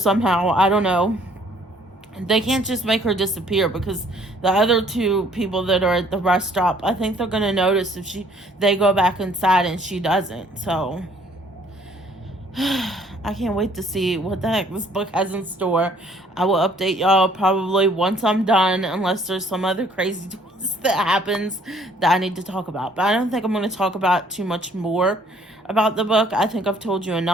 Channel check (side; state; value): both; normal; correlation 0.60